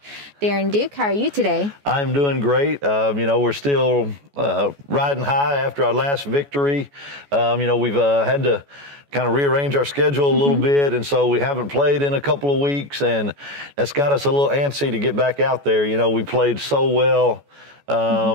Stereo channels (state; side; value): late; left; 14 ms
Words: Darren Duke. How are you today? I'm doing great. We're still riding high after our last victory. We've had to kind of rearrange our schedule a little bit, and so we haven't played in a couple of weeks, and that's got us a little antsy to get back out there. We played so well